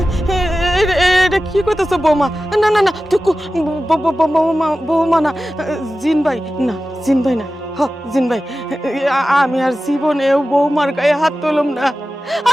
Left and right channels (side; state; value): both; normal; correlation 0.95